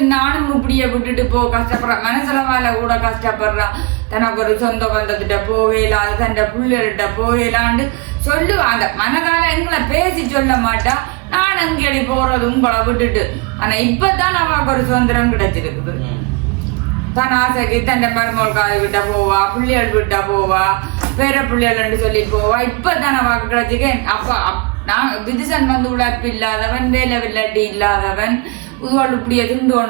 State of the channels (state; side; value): quieter; left; 27.5 dB